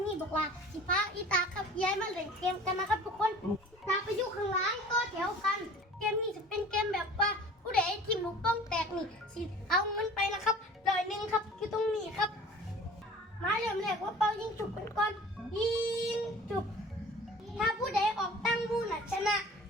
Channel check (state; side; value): normal; both; correlation 0.45